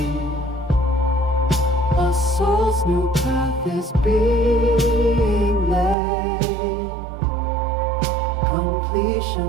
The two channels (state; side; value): drops out; left; at 6.0 s